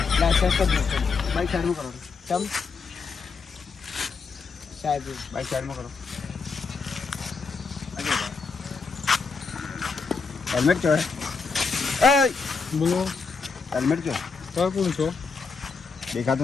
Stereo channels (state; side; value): quieter; right; 4.8 dB